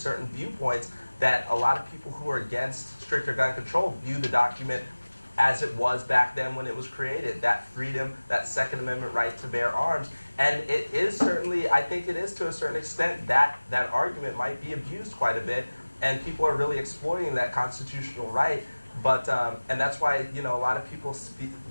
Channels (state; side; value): inverted; both; correlation -1.00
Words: viewpoints that a lot of people who are against stricter gun control view the document as it was back then when it was created. That freedom, that Second Amendment right to bear arms. And it is certainly, I think it is to a certain extent, that argument might be abused quite a bit, and people are really exploiting that constitutional right. But and that's why a lot of people